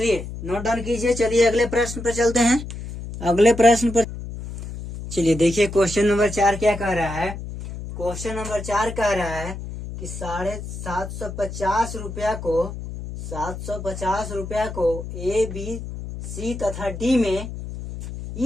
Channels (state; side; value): noise; left; hum, 9 dB below the sound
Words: नोट डाउन कीजिए। चलिए अगले प्रश्न पर चलते हैं। अगले प्रश्न पर चलिए देखिए, क्वेश्चन नंबर 4 क्या कह रहा है। क्वेश्चन नंबर 4 कह रहा है कि 750 रुपया को ए बी सी तथा डी में